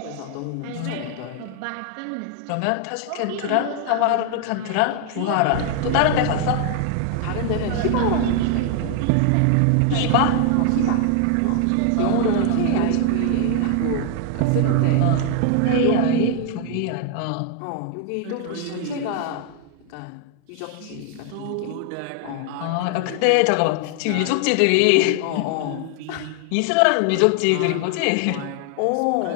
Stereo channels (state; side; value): different; both; correlation 0.00